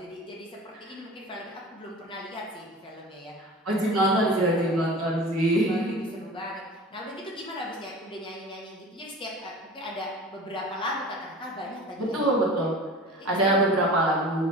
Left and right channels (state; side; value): normal; both; correlation 0.38